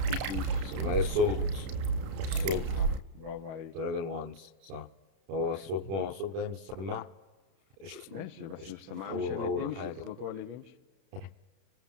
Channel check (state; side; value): late; left; 31 ms